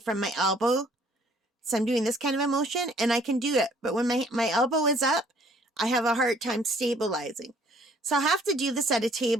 my elbow. So I'm doing this kind of a motion, and I can do it. But when my elbow is up, I have a hard time stabilizing. So I'll have to do this at a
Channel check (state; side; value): normal; both; correlation 0.59